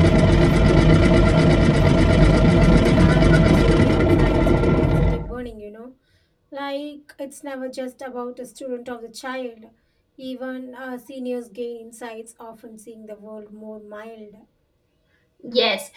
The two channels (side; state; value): both; identical; correlation 1.00